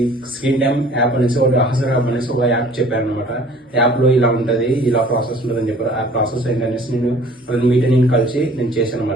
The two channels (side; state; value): both; normal; correlation 0.51